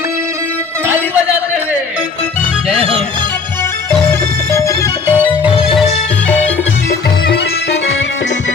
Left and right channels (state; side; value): quieter; right; 4.8 dB